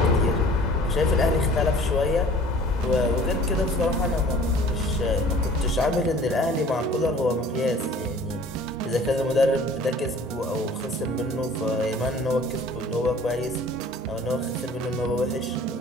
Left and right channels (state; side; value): normal; both; correlation 0.49